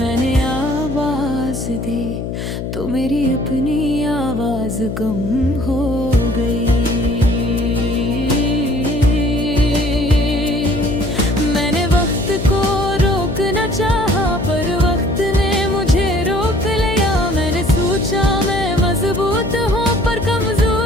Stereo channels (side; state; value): left; noise; hum, 5 dB below the sound